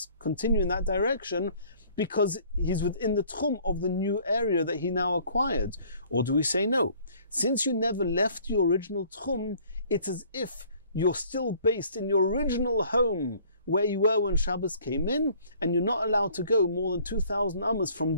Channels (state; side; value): inverted; both; correlation -0.56